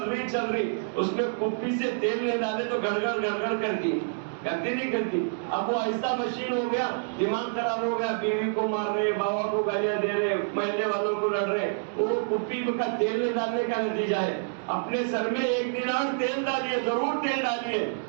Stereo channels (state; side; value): silent; left; digital silence